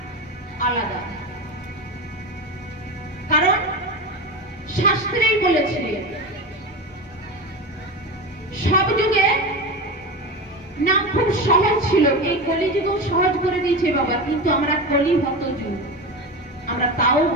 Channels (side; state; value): both; normal; correlation 0.23